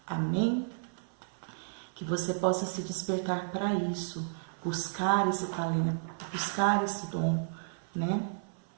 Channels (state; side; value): silent; left; 56 dB below the other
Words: Amém? Que você possa se despertar para isso, buscar esse talento, buscar esse dom, né?